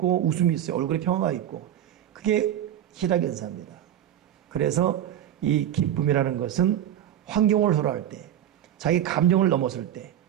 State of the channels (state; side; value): quieter; left; 11.0 dB